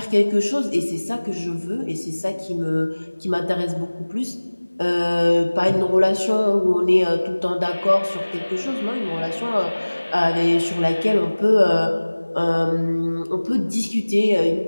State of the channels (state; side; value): inverted; both; correlation -1.00